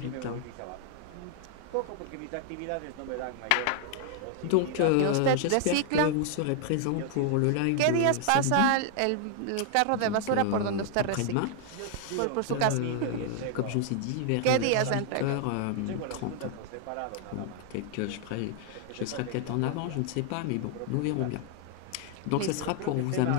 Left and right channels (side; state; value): both; different; correlation 0.00